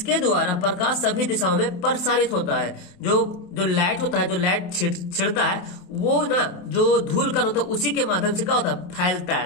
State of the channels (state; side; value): late; right; 28 ms